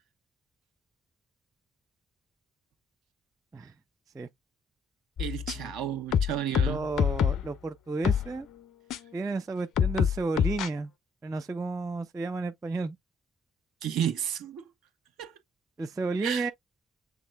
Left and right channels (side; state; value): both; normal; correlation 0.65